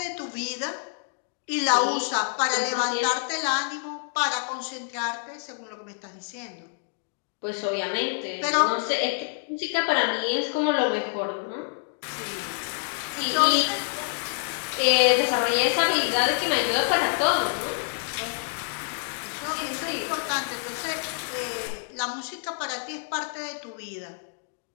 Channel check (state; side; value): silent; right; digital silence